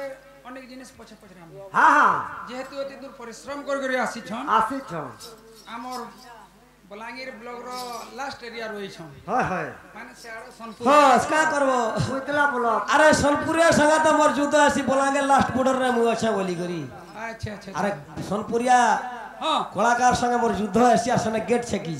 অনেক জিনিস পছে পচরাম हाँ हाँ যেহেতু এত দূর পরিশ্রম করে আসিছন आसी छो আমার বলাঙ্গীর ব্লকর লাস্ট এরিয়া রয়েছন हाय हाय মানে সেআড়ে সোনপুর হস কা করব उतला बोलो আরে সোনপুরিয়া সঙ্গে তো মোর যুদ্ধ আসি বলাঙ্গে লাস্ট বর্ডর রে মু আছে বলি করি আচ্ছা আচ্ছা আরে সোনপুরিয়া হ্যাঁ কলাকার সঙ্গে মোর যুদ্ধ আসি আর সঙ্গে গেট ছেকি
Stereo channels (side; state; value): both; identical; correlation 1.00